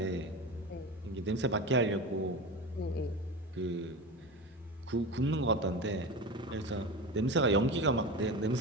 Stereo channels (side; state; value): both; normal; correlation 0.26